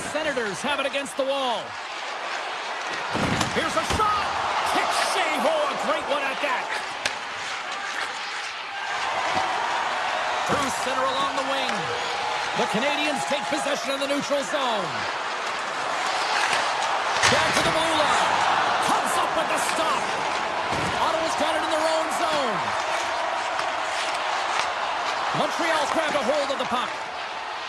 Senators have it against the wall. Here's a shot. Kick save. Oh, a great one at that. Through center along the wing. The Canadians take possession of the neutral zone. Back to the blue line. Comes up with the stop. Ottawa's got it in their own zone. Montreal's grabbed a hold of the puck.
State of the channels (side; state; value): both; identical; correlation 1.00